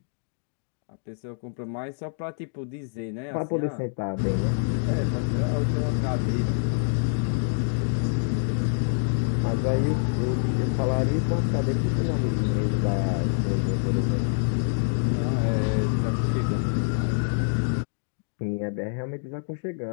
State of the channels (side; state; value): right; silent; digital silence